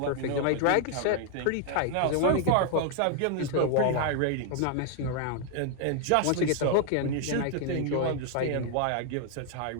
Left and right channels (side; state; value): both; different; correlation 0.00